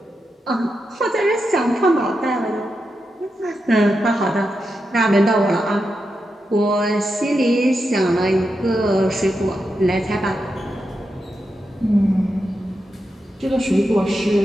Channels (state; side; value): normal; both; correlation 0.87